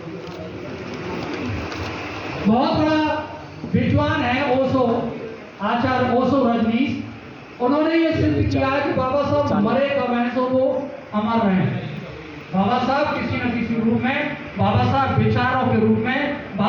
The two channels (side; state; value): both; identical; correlation 1.00